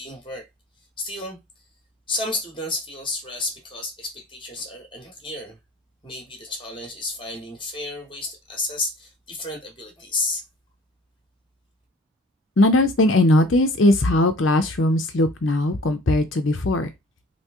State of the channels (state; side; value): normal; both; correlation 0.50